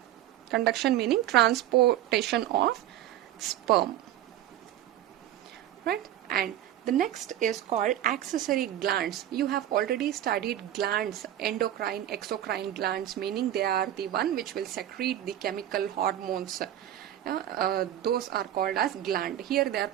meaning transportation of sperm, right? And the next is called accessory glands. You have already studied glands, endocrine, exocrine glands, meaning they are the one which will secrete the chemical hormones. Those are called as gland. Here they are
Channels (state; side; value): quieter; left; 12.3 dB